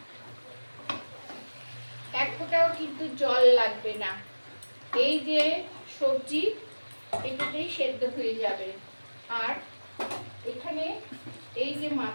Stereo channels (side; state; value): both; inverted; correlation -1.00